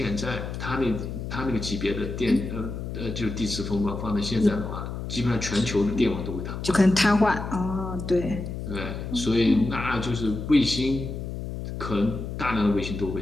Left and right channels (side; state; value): left; noise; hum, 6 dB below the sound